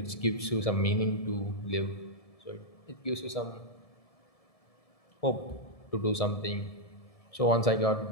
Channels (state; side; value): late; right; 1.7 ms